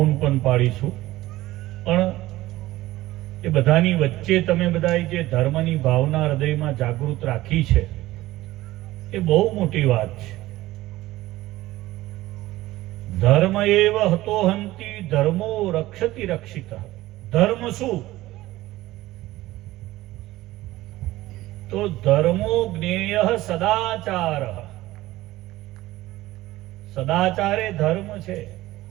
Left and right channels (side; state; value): left; quieter; 17.1 dB